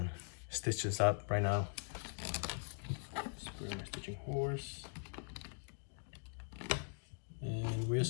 stitch this up right now. Spray my stitching horse, and we're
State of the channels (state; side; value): silent; right; 50 dB below the other